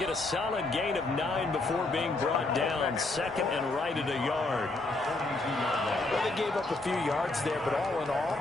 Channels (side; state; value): right; quieter; 3.1 dB